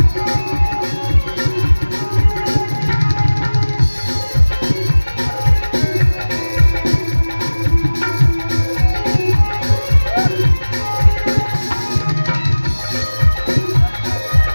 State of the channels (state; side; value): inverted; both; correlation -1.00